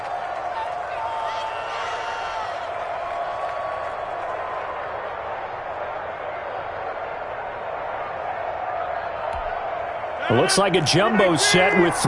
It looks like a jumbo set with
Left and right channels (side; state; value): both; identical; correlation 1.00